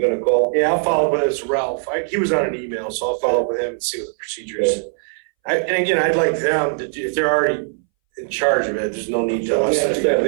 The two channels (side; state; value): left; silent; 63 dB below the other